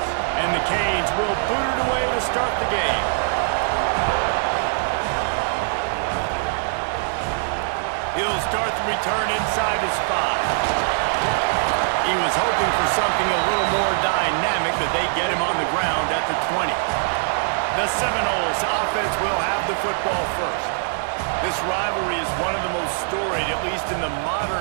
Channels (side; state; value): left; silent; digital silence